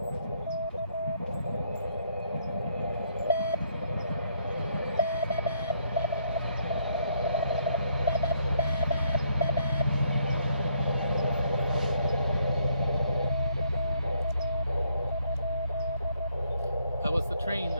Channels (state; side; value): inverted; both; correlation -0.70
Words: That was the train.